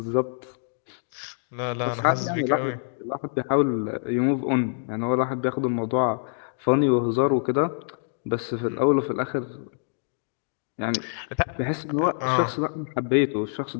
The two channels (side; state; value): right; silent; digital silence